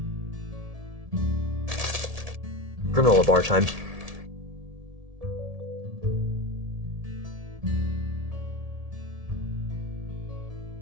Granola bar time.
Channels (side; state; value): left; late; 1.7 ms